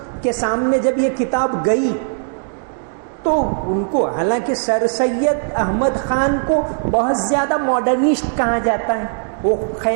کے سامنے جب یہ کتاب گئی تو ان کو، حالانکہ سر سید احمد خان کو بہت زیادہ ماڈرنسٹ کہا جاتا ہے، وہ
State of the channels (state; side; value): silent; left; digital silence